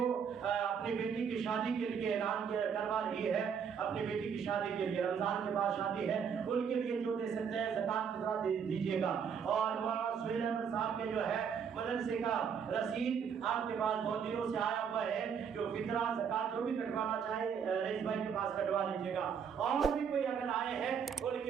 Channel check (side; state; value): left; quieter; 7.1 dB